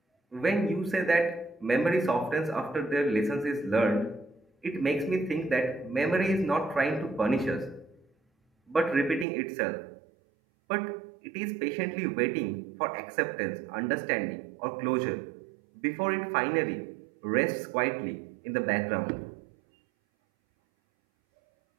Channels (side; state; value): left; drops out; at 9.2 s